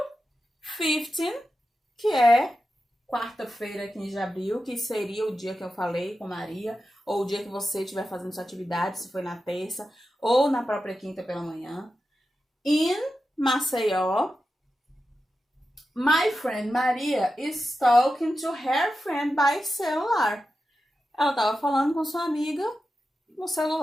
15, que é quarta-feira, 15 de abril, que seria o dia que eu falei com Maria, ou o dia que você estiver fazendo sua atividade, se foi na terça, ou na própria quinta pela manhã. In Maceió, my friend Maria is talking to her friend by celular. Ela estava falando com sua amiga no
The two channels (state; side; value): normal; both; correlation 0.91